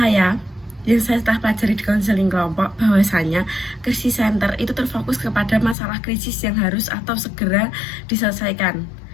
yang saya telah pelajari di konseling kelompok, bahwasanya krisis center itu terfokus kepada masalah krisis yang harus atau segera diselesaikan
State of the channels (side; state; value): right; drops out; at 5.8 s